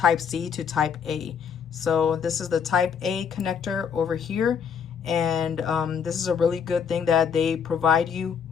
C to type A. So this is the type A connector over here, and this is a really good thing that they provide you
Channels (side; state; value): right; quieter; 7.1 dB